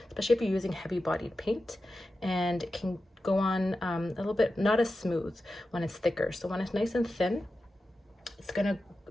especially if you're using heavy bodied paint, and it can go on a little bit not as smooth when it's thicker. So when it's nice and thin, it's gonna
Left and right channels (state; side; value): normal; both; correlation 0.92